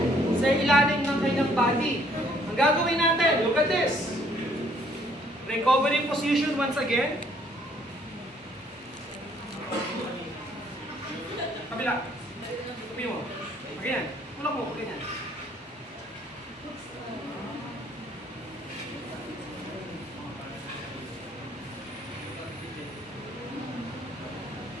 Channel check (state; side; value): normal; both; correlation 0.63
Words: sa ilalim ng kanyang body. Ang gagawin natin, look at this. Recovery position once again. Kabila. Tupi mo. Ganyan. Tulak mo. Ganyan.